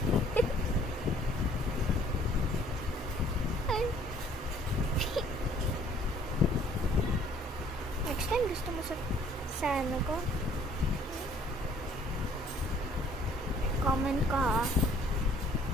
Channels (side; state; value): both; normal; correlation 0.58